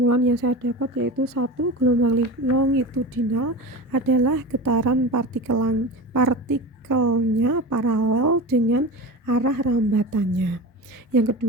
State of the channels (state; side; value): normal; both; correlation 0.28